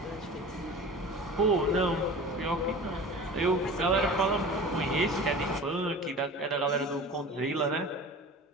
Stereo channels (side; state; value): both; normal; correlation 0.37